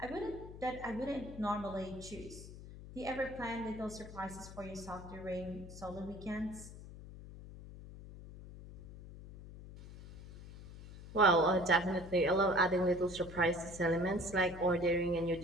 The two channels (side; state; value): left; noise; hum, 14 dB below the sound